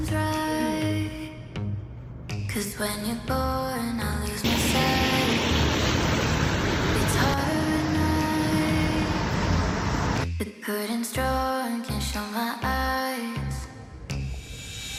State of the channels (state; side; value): identical; both; correlation 1.00